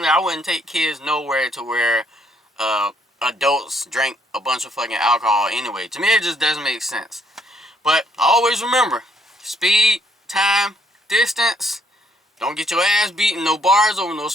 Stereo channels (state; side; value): normal; both; correlation 0.69